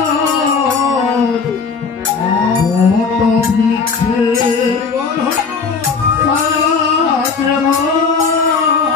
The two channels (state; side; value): quieter; right; 5.2 dB